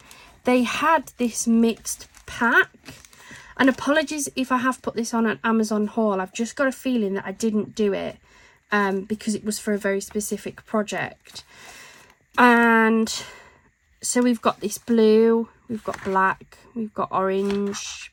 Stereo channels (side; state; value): both; identical; correlation 1.00